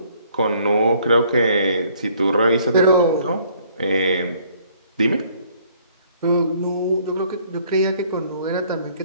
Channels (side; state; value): both; inverted; correlation -0.62